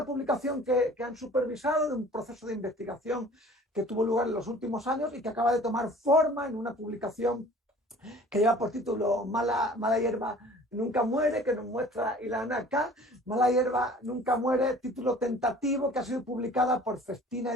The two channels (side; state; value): both; normal; correlation 0.48